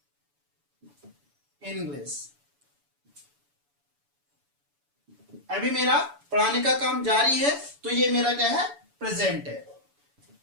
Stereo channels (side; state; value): left; late; 7.0 ms